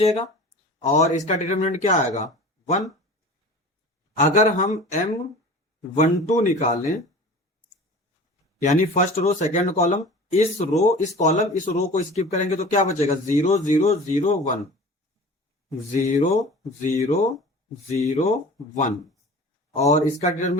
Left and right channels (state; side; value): normal; both; correlation 0.39